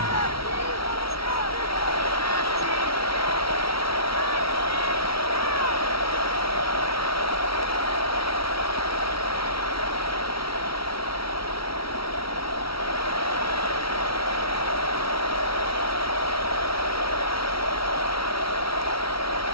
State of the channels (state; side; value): late; right; 0.75 ms